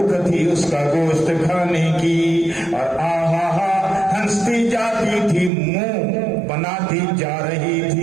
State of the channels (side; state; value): left; drops out; at 5.5 s